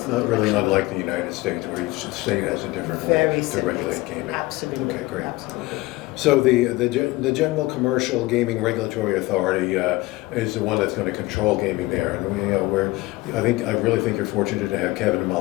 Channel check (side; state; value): right; quieter; 20.2 dB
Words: not really unlike the United States, where each state has a different way to regulate gaming. Absolutely. Okay, great. Absolutely. So the General Commercial Gaming Regulatory Authority is the one that's going to control gaming there, and I really think you're fortunate to have Kevin